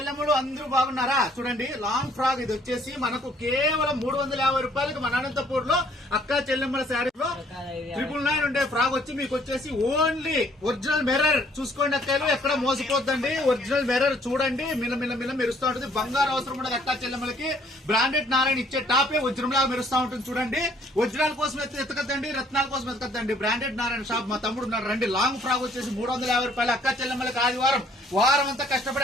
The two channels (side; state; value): both; normal; correlation 0.62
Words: అందరూ బాగున్నారా? చూడండి లాంగ్ ఫ్రాక్ ఇది వచ్చేసి మనకు కేవలం 350 రూపాయలకి మన అనంతపూర్ లో అక్క చెల్లెమ్మల శారీలో 999 ఉండే ఫ్రాక్ వచ్చి మీకు వచ్చేసి ఓన్లీ ఒరిజినల్ మిర్రర్ చూసుకోండి. అక్కయ్యలు ఎక్కడ మోసపోద్దండి. ఒరిజినల్ మిర్రర్ చూడండి, మిల్ల మెరుస్తూ ఉంటుంది. బంగారు అవసరం ఉండదు అక్క చెల్లెమ్మలకి. బ్రాండెడ్ నారాయణ ఇచ్చే టాపే ఒరిజినల్ లాగా మెరుస్తూ ఉంటుంది. చూడండి ఒరిజినల్ కోసం ఎత్తకద్దండి, రత్నాల కోసం ఎత్తకద్దండి. బ్రాండెడ్ నారాయణ షాప్ మా తమ్ముడు ఉన్నాడు రండి. లాంగ్ ఫ్రాక్ వచ్చేసి 350 రూపాయలు అక్క చెల్లెమ్మలకి. ఆదివారం వారం అంతా కష్టపడి